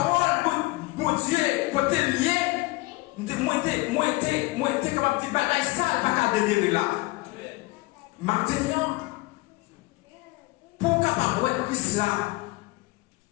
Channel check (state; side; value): quieter; right; 21.8 dB